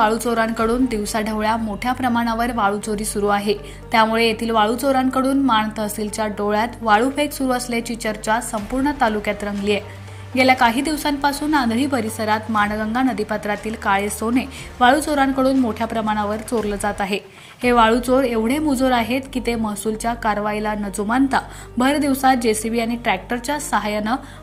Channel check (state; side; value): identical; both; correlation 1.00